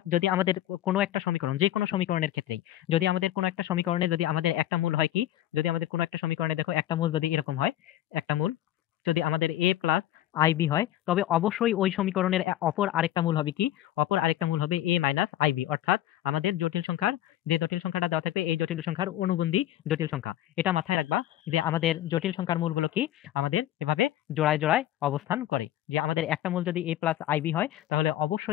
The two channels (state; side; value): quieter; right; 13.1 dB